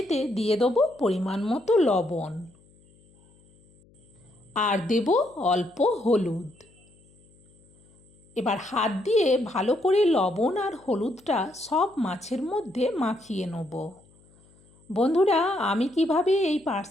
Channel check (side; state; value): left; noise; hum, 30 dB below the sound